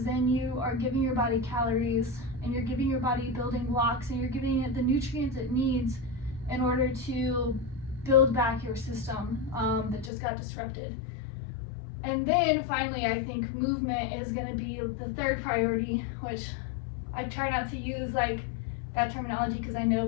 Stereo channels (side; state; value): right; drops out; at 10.1 s